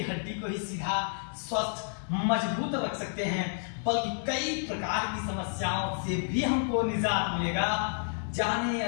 हड्डी को ही सीधा, स्वस्थ, मजबूत रख सकते हैं, बल्कि कई प्रकार की समस्याओं से भी हमको निजात मिलेगा। जाने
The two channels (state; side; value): silent; right; 58 dB below the other